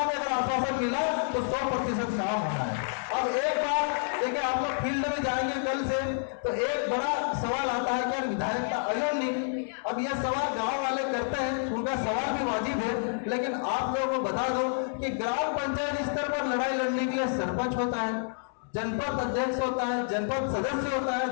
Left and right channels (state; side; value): silent; right; 59 dB below the other